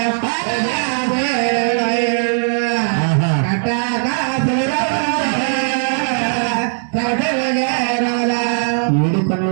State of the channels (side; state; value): left; silent; 68 dB below the other